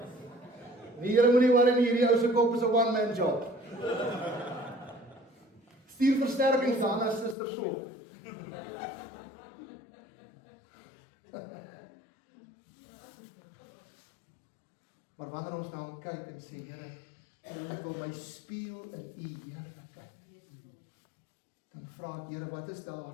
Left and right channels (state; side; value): drops out; right; at 7.4 s